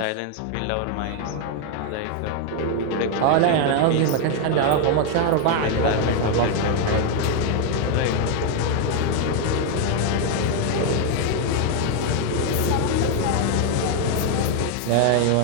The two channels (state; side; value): different; both; correlation 0.01